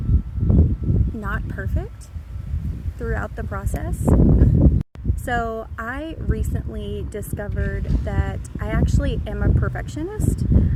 not perfect throughout the process. So I recently discovered that I actually am a perfectionist,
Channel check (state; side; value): identical; both; correlation 1.00